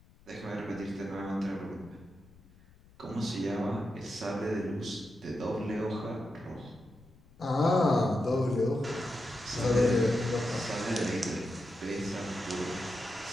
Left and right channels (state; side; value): noise; left; rumble, 26 dB below the sound